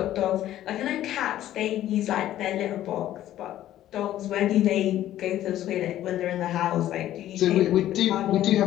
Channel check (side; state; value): right; quieter; 13.0 dB